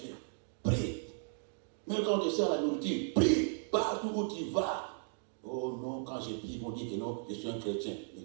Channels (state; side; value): silent; left; digital silence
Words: prie. Même quand on te sert la nourriture, prie partout où tu vas. Oh non, quand je prie, ils vont dire que non, je suis un chrétien. Mais